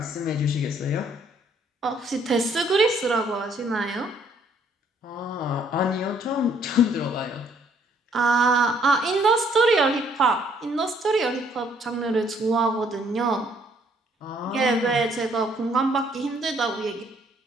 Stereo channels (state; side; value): normal; both; correlation 0.65